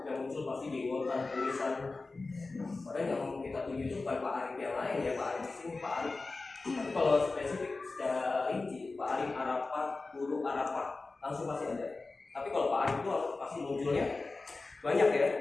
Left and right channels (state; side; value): quieter; right; 3.6 dB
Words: yang muncul pasti di jenggotan, tulisan. Padahal yang kita tuju itu bukan Pak Arif yang lain ya, Pak Arif di sini Pak Arif. Tapi kalau spesifik secara rinci, Pak Arif Arafat, Guru Arafat, langsung pasti ada. Tapi kalau Pak Arif itu pasti munculnya banyak ya.